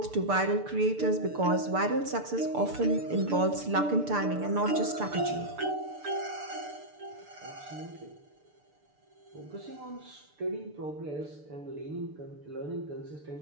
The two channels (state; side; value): late; left; 6.8 ms